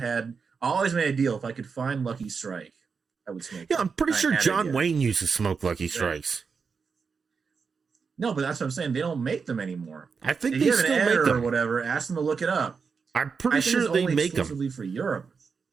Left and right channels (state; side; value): quieter; left; 5.5 dB